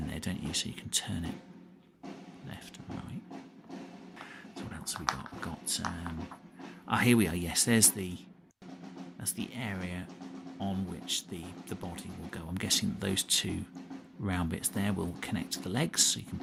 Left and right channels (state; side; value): identical; both; correlation 1.00